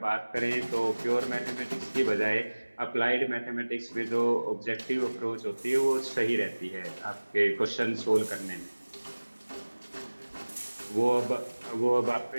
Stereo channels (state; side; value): inverted; both; correlation -1.00